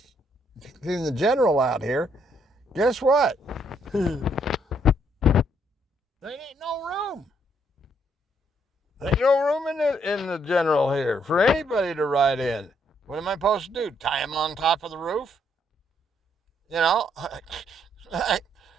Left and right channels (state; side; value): normal; both; correlation 0.71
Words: the general out here, guess what? There ain't no room. There ain't no room in the general here for anybody to ride in. What am I supposed to do? Tie him on top of the roof? You know?